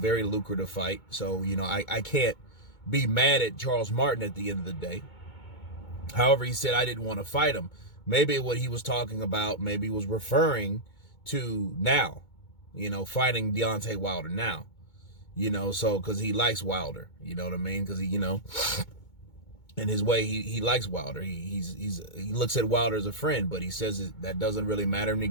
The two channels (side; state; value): right; late; 2.2 ms